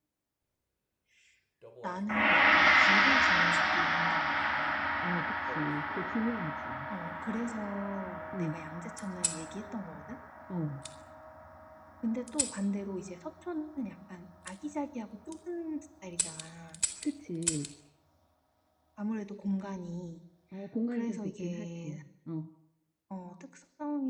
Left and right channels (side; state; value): both; identical; correlation 1.00